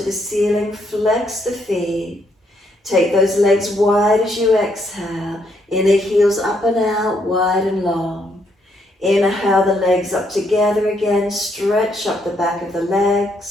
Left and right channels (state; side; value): normal; both; correlation 0.74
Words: the ceiling. Flex the feet. Take those legs wide as you exhale. Inner heels up and out, wide and long. Inhale the legs up together again. Stretch up the back of the